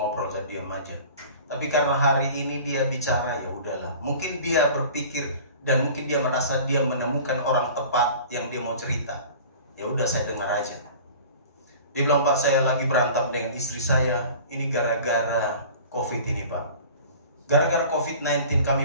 saya diam aja. Tapi karena hari ini dia bicara, ya udahlah. Mungkin dia berpikir dan mungkin dia merasa dia menemukan orang tepat yang dia mau cerita. Ya udah saya dengar aja. Dia bilang, Pak saya lagi berantem dengan istri saya. Ini gara-gara COVID ini Pak. Gara-gara COVID-19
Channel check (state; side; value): inverted; both; correlation -0.42